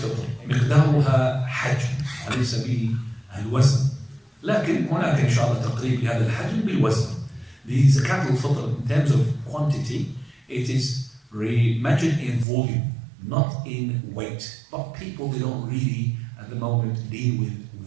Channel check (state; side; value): drops out; left; at 12.5 s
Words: مقدارها حجم وليس به الوزن، لكن هناك ان شاء الله تقريب لهذا الحجم بالوزن. لزكاه الفطر in terms of quantity it is measured in volume, not in weight. But people, they don't really at the moment deal with